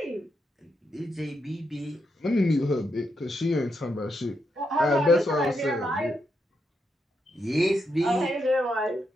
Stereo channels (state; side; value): normal; both; correlation 0.82